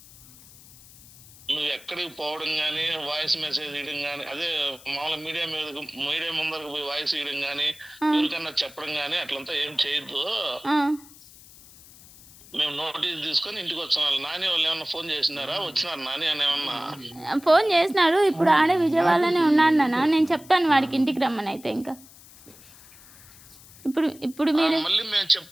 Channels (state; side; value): noise; left; hiss, 22 dB below the sound